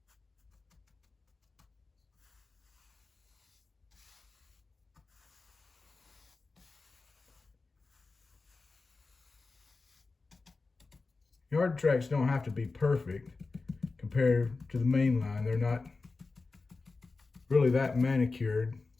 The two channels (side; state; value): right; quieter; 3.9 dB